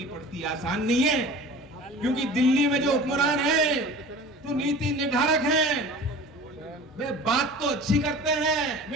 पड़ती है। आसान नहीं है, क्योंकि दिल्ली में जो हुक्मरान है तो नीति निर्धारक हैं, वे बात तो अच्छी करते हैं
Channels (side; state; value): both; normal; correlation 0.40